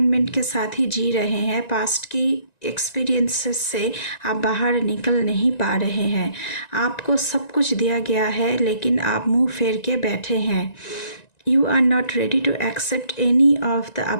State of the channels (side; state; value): right; late; 1.9 ms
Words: के साथ ही जी रहे हैं। पास्ट की एक्सपीरियंसेस से आप बाहर निकल नहीं पा रहे हैं। आपको सब कुछ दिया गया है लेकिन आप मुंह फेर के बैठे हैं। You are not ready to accept any of the